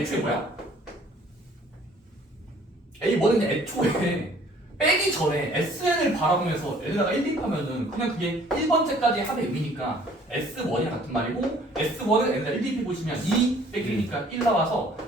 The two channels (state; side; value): normal; both; correlation 0.56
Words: 뭐야? A1은 애초에 빼기 전에 SN을 바라보면서 L에다가 1 대입하면은 그냥 그게 1번째까지 합의 의미니까 S1이랑 같은 말이고 S1은 L에다 1 대입해 보시면 2 빼기 1이니까 1 나와서